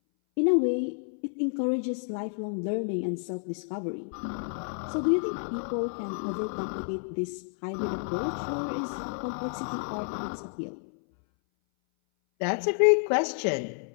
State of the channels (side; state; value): right; silent; 58 dB below the other